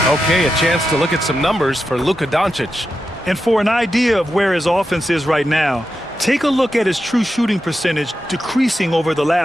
Okay, a chance to look at some numbers for Luka Doncic. And for an idea of where his offense is right now, take a look at his true shooting percentage decreasing over the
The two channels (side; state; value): both; normal; correlation 0.88